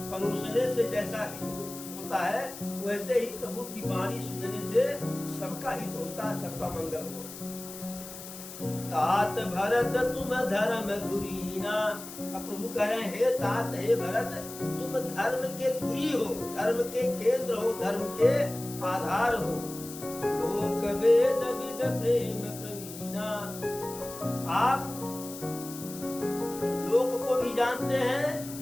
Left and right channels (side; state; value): left; noise; hiss, 12 dB below the sound